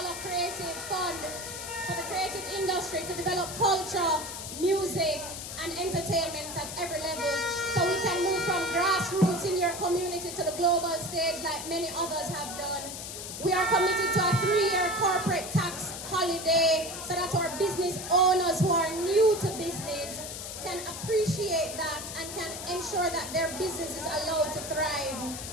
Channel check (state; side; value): noise; left; hiss, 8 dB below the sound